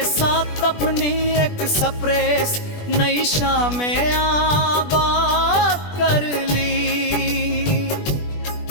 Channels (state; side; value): late; right; 20 ms